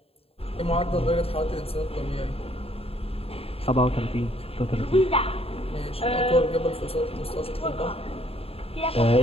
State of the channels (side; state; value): right; late; 0.28 ms